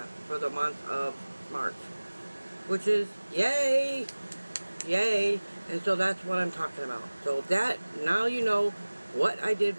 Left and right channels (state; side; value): inverted; both; correlation -1.00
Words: for the month of March, which is yay, yay. And so that's what I'm talking about. So that, now you know what I did